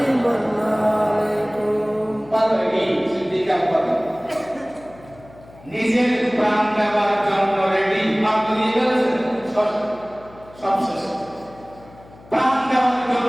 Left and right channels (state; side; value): noise; left; hum, 23 dB below the sound